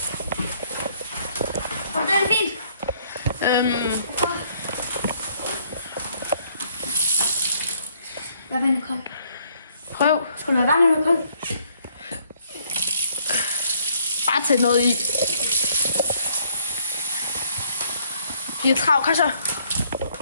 Og det er fint. Hvad vand er koldt? Prøv. Skal du have vand eller koldt? Bare tag noget i. De er travlt, kom så.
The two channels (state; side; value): inverted; both; correlation -0.65